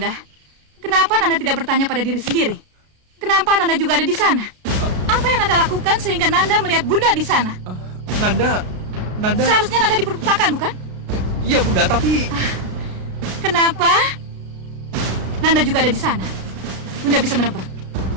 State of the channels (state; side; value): late; left; 33 ms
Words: kenapa Nanda tidak bertanya pada diri sendiri? Kenapa Nanda juga ada di sana? Apa yang Nanda lakukan sehingga Nanda melihat Bunda di sana? Nanda... Seharusnya Nanda diperpustakaan, bukan? Iya Bunda, tapi... Kenapa Nanda juga ada di sana? Bunda bisa menebak.